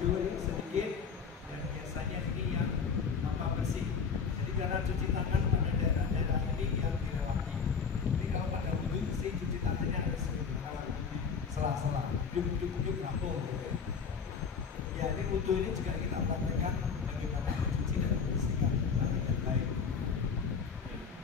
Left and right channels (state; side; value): quieter; right; 5.9 dB